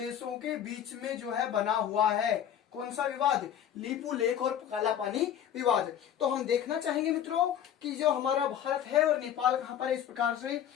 के बीच में जो है बना हुआ है। कौन सा विवाद? लिपुलेख और काला पानी विवाद। तो हम देखना चाहेंगे मित्रों कि जो हमारा भारत है और नेपाल कहां पर है। इस प्रकार से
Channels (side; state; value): right; quieter; 9.8 dB